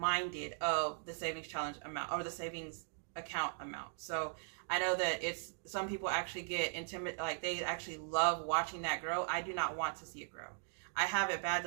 of the savings challenge amount or the savings account amount. So I know that some people actually get intimidated, like they actually love watching that grow. I do not want to see it grow. I have it bad.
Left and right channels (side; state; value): left; silent; digital silence